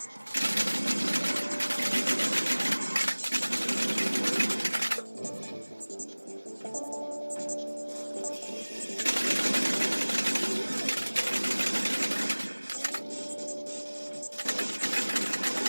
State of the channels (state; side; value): inverted; both; correlation -1.00